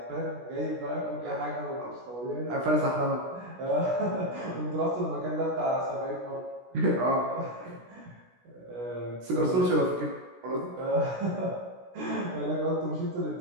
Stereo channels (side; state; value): left; late; 16 ms